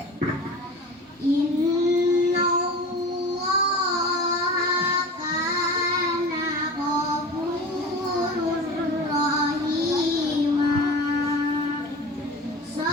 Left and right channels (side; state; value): both; normal; correlation 0.35